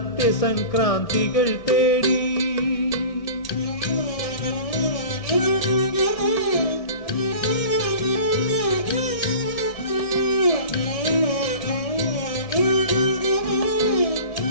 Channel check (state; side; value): late; right; 1.8 ms